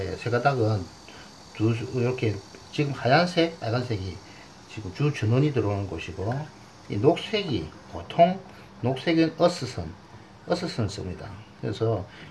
세 가닥은 이렇게 지금 하얀색, 빨간색이 지금 주 전원이 들어오는 곳이고, 이 녹색이 보통 녹색은 어스선을 씁니다. 그래서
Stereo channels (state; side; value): identical; both; correlation 1.00